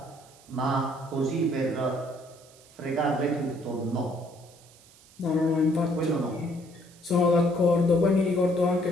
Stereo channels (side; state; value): right; noise; hiss, 25 dB below the sound